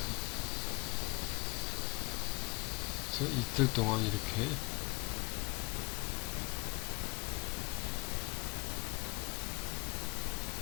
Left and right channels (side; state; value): right; quieter; 27.9 dB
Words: 그래서 이틀 동안 이렇게